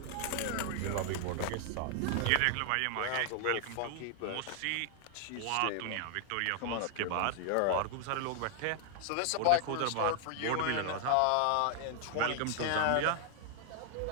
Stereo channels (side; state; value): both; different; correlation 0.00